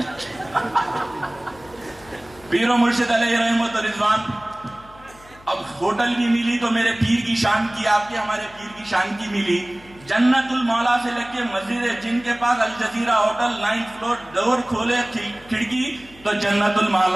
پیر و مرشد علیہ رحمت و رضوان، اب ہوٹل بھی ملی تو میرے پیر کی شان کی، آپ کے ہمارے پیر کی شان کی ملی. جنت المولا سے لگ کے مسجد جن کے پاس الجزیرہ ہوٹل 9th فلور، ڈور کھولے کھڑکی تو جنت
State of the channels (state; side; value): noise; left; hum, 24 dB below the sound